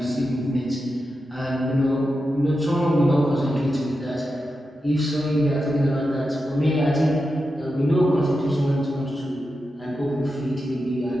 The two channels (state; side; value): normal; both; correlation 0.89